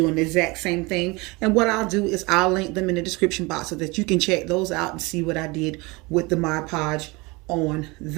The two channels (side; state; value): left; quieter; 25.2 dB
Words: the exact same thing. And what I'll do is I'll link them in the description box so that you can check those out and see what I did with the Mod Podge on